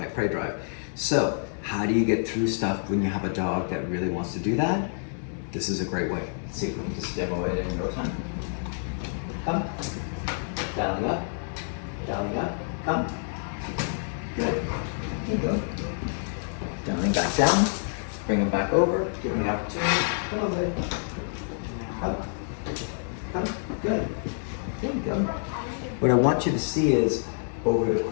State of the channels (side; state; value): right; silent; digital silence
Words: prey drive. So how do you get through stuff when you have a dog that really wants to do that? This is a great way. Let's see if we can just demo it in no time. Come. Dialing up. Dialing up. Come. Good. There you go. Dialing back down. Bring him back over. Give him the opportunity. Come on, baby. Come. Come. Good. There you go. What I want you to see is over the